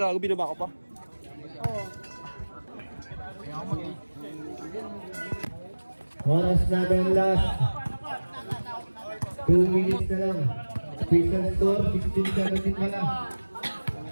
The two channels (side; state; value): both; inverted; correlation -1.00